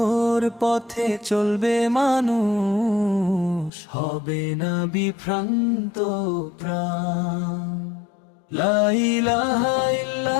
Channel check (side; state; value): right; drops out; at 3.7 s